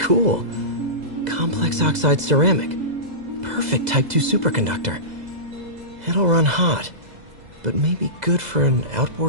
Complex oxide ceramic. Perfect Type 2 superconductor. It'll run hot, but maybe good for an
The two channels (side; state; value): left; late; 2.0 ms